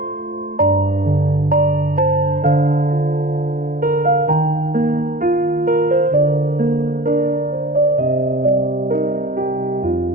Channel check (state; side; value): late; left; 0.41 ms